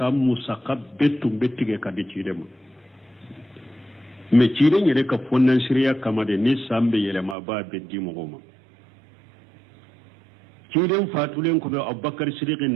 saka betum bettige ka de cidema me ciden yere ka fonnan shirya kama de ni sambe yele ma ba beddi mo goma ciden fatulen ko be abubakar siddiq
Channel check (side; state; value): left; drops out; at 7.4 s